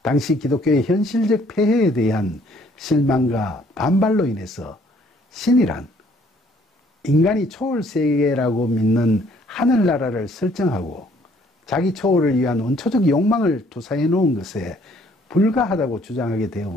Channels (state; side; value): normal; both; correlation 0.62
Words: 당시 기독교의 현실적 폐해에 대한 실망과 반발로 인해서 신이란 인간이 초월세계라고 믿는 하늘나라를 설정하고 자기 초월을 위한 원초적 욕망을 투사해 놓은 것에 불과하다고 주장하게